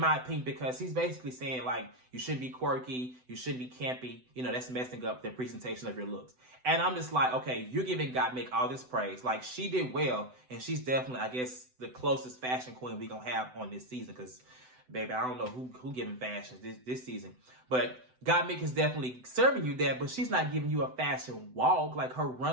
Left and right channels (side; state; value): left; late; 7.9 ms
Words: opinion, because he's basically saying, like, you shouldn't be quirky, you shouldn't be campy. You know, that's messing up the presentation of your looks. And I'm just like, okay, you're giving Gottmik all this praise. Like, she did well, and she's definitely, I guess, the closest fashion queen we gonna have on this season, because baby, I don't know who giving fashion this season. But Gottmik is definitely serving you that, but she's not giving you a fashion walk. Like, her